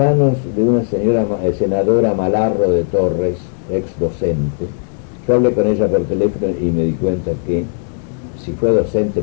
de una señora senadora Malarro de Torres, ex docente. Yo hablé con ella por teléfono y me di cuenta que si fue docente,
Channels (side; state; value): right; silent; digital silence